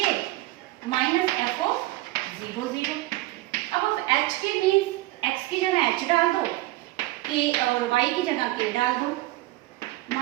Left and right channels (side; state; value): left; quieter; 18.4 dB